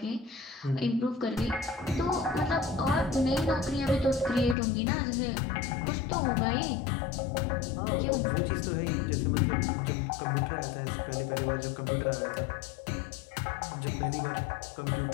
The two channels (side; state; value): right; drops out; at 4.5 s